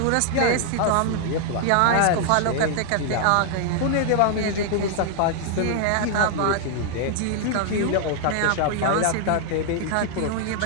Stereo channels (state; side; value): different; both; correlation 0.00